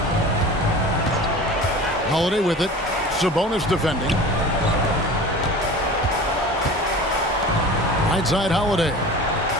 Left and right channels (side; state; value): both; normal; correlation 0.37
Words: Holiday with it. Sabonis defending. Right side Holiday.